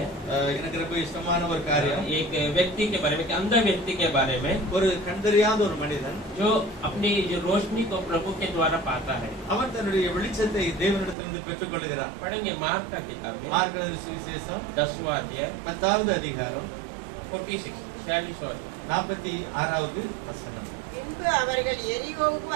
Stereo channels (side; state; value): left; drops out; at 11.2 s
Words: எனக்கு ரொம்ப இஷ்டமான ஒரு காரியம். एक व्यक्ति के बारे में, एक अंधा व्यक्ति के बारे में, ஒரு கண்டறியாத ஒரு மனிதன் जो अपनी जो रोशनी को प्रभु के द्वारा पाता है। அவன் தன்னுடைய வெளிச்சத்தை தேவனிடத்திலிருந்து பெற்றுக் கொள்கிறான். पढ़ेंगे मार्क का किताब में மார்க் எழுதின சுவிசேஷம் 10वां अध्याय 10வது அதிகாரம் 46 46வது வசனம். பின்பு அவர்கள் எரிகோவுக்கு